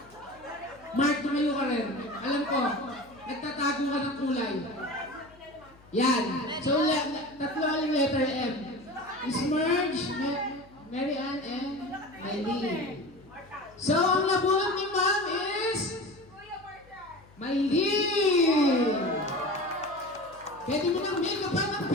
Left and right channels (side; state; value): left; noise; hum, 26 dB below the sound